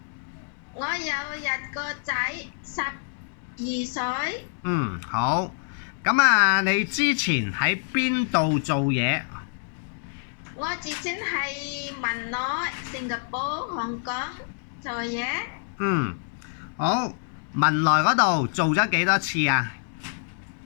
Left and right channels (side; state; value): right; silent; digital silence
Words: 我有一個仔，12歲。好。咁啊，你之前喺邊度做嘢？我之前喺文萊、新加坡、香港做嘢。好。文萊嗰度做咗幾多次啊